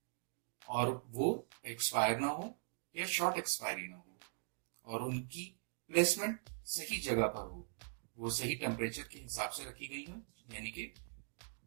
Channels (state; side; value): silent; left; digital silence